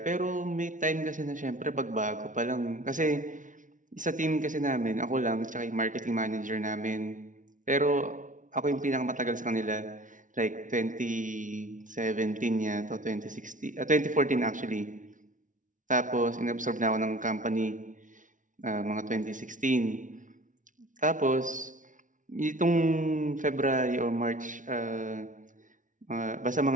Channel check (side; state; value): left; late; 0.37 ms